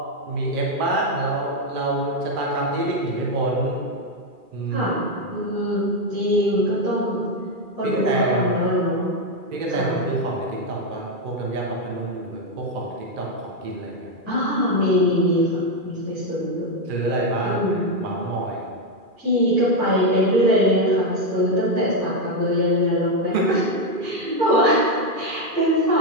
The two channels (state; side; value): late; left; 2.4 ms